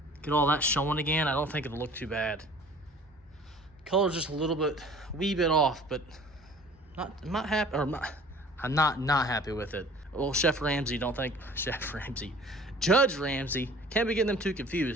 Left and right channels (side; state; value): both; normal; correlation 0.48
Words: Get all that showing again. I don't think it'll look too bad. Color's just a little bit, wee bit off, but I'm not happy, or I'm not happy with it. Well, Chef Ramsay, Judge Ramsay, can't be getting them too